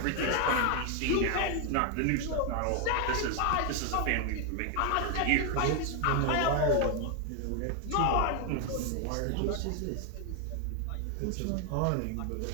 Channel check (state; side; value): different; both; correlation 0.00